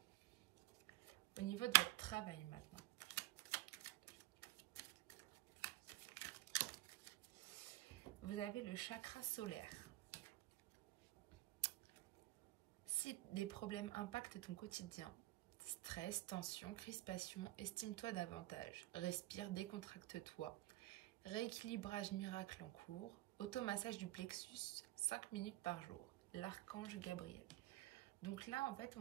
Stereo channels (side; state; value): left; quieter; 17.6 dB